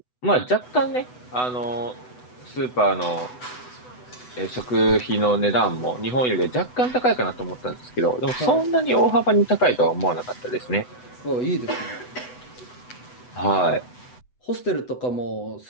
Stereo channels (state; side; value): late; right; 8.0 ms